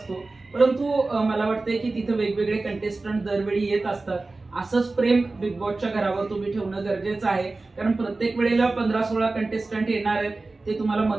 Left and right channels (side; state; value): left; quieter; 3.4 dB